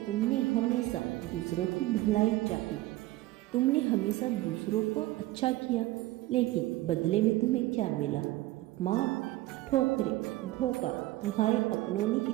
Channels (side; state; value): left; quieter; 17.4 dB